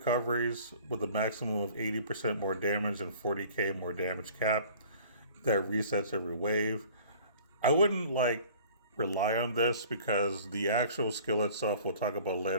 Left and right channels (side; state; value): both; inverted; correlation -0.49